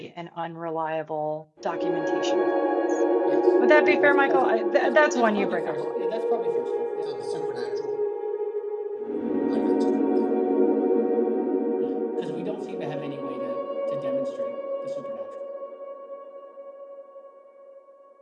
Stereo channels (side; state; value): both; identical; correlation 1.00